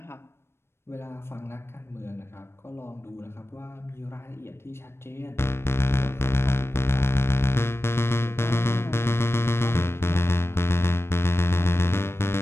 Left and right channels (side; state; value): right; late; 0.12 ms